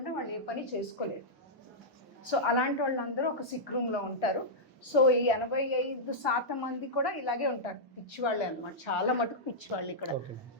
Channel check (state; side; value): normal; both; correlation -0.10